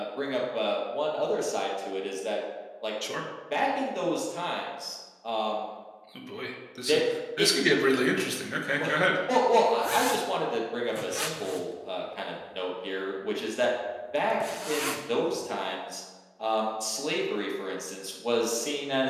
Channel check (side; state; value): both; identical; correlation 1.00